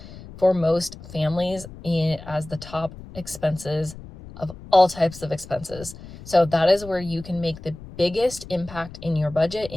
for most families as the top expenses of all types of expenses. So that is where you can make the biggest impact in your budget,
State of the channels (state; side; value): noise; left; rumble, 16 dB below the sound